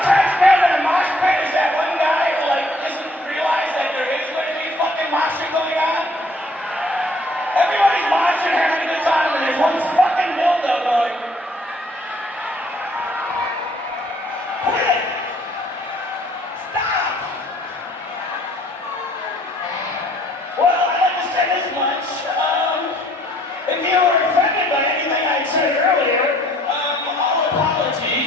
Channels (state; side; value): normal; both; correlation 0.61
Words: cracks me up in a mosh pit is that one guy who like doesn't realize that there is going to be fucking moshing going on. Everybody's moshing, having a good time, and there's one fucking dildo going. Quit it! Stop! Well, I'd like to say this much. If you were offended by anything I said earlier, all